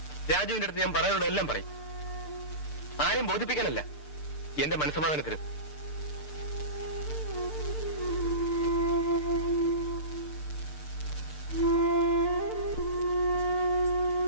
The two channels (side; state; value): right; late; 6.7 ms